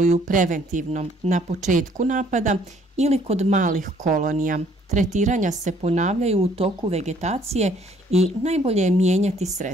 preventivno na početku napada ili kod malih kolonija. Tretiranja se ponavljaju u toku vegetacije i najbolje je mijenjati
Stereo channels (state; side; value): normal; both; correlation 0.62